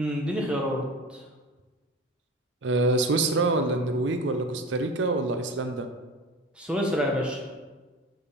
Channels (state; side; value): normal; both; correlation 0.33